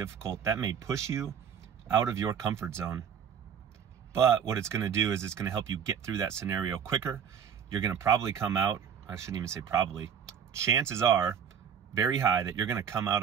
That may push you out of your comfort zone. But what it's going to do is it's going to help you get through that scenario quicker. You're going to probably come out, I shouldn't even say probably, chances are very high that you're going to come out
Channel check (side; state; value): left; quieter; 7.9 dB